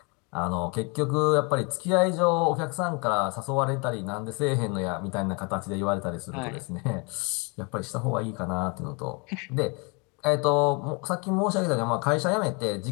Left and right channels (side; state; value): right; quieter; 31.4 dB